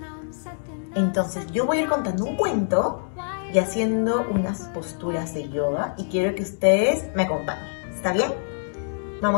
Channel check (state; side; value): silent; right; digital silence